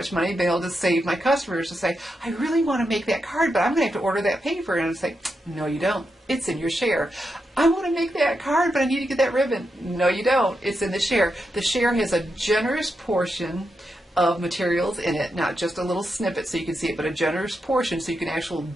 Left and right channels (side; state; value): both; normal; correlation 0.85